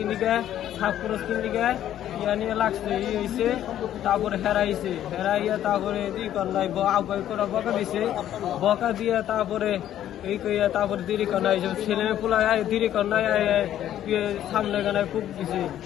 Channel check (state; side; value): quieter; right; 11.6 dB